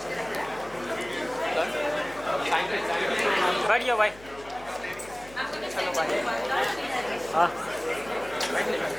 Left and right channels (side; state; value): left; noise; hum, 20 dB below the sound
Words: बैठ जाओ भाई I'm going to चलो send भाई it to Varda. She'll send it. हाँ